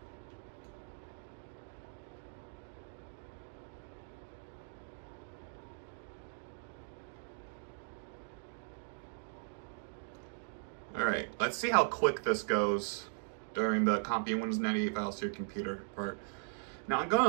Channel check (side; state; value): left; silent; digital silence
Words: Alright, let's see how quick this goes during the copying Windows 98 files to your computer part. Now I'm going